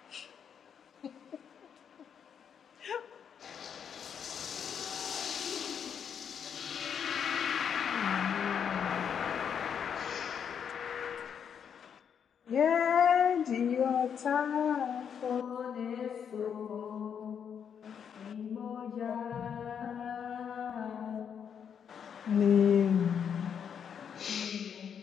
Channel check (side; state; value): right; quieter; 7.7 dB